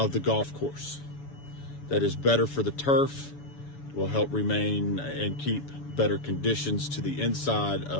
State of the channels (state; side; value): late; right; 7.0 ms